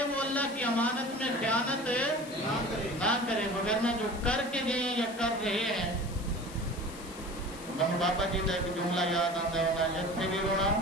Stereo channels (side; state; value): left; noise; hiss, 17 dB below the sound